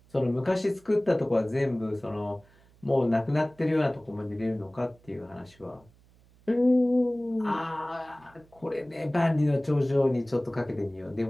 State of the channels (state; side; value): noise; right; hum, 29 dB below the sound